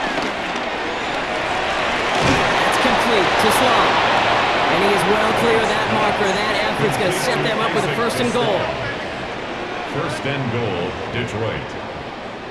That's complete to Sloan. And he is well clear of that marker. That effort's going to set them up with a 1st and goal. 1st and goal, Detroit.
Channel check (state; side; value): identical; both; correlation 1.00